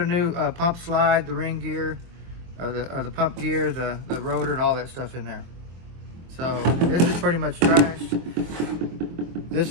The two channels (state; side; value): late; left; 23 ms